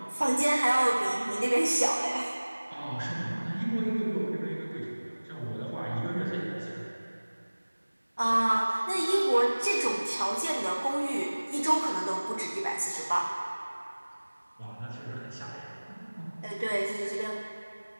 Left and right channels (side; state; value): both; inverted; correlation -1.00